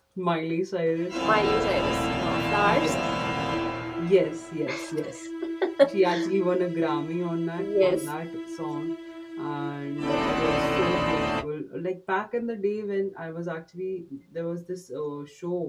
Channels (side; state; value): both; identical; correlation 1.00